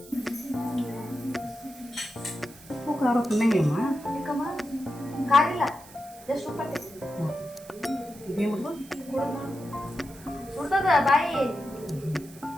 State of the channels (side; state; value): right; noise; hiss, 20 dB below the sound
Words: ಉಪ್ಪು ಖಾರ ತಿನ್ನಂಗಿಲ್ಲಮ್ಮ? ಯಾಕಮ್ಮ ಕಾರಿಲ್ಲ, ಜಸ್ಟ್ ಉಪ್ಪು ಹಾಕ್ತೀನಿ. ಇದೇನು ಸುಡ್ತದ ಬಾಯಿ